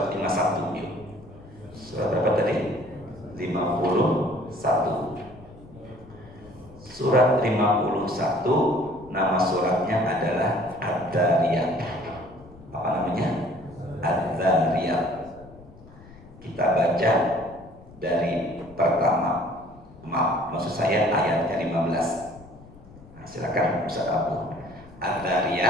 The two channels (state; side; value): noise; left; rumble, 21 dB below the sound